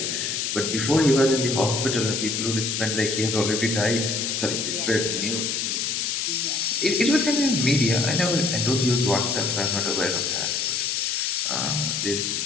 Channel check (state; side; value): noise; left; hiss, 1 dB below the sound